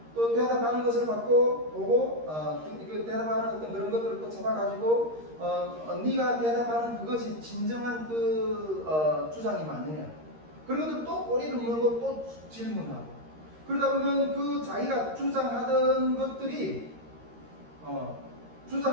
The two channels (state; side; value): late; left; 13 ms